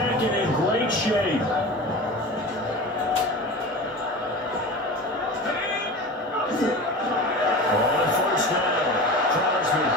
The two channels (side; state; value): both; normal; correlation 0.32